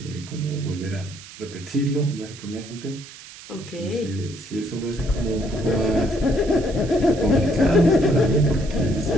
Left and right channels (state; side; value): noise; right; hiss, 17 dB below the sound